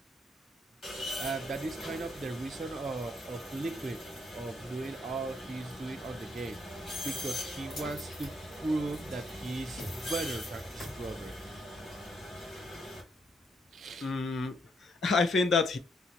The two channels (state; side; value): normal; both; correlation 0.74